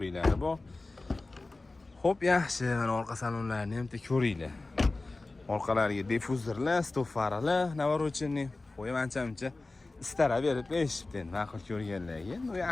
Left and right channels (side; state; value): right; quieter; 3.3 dB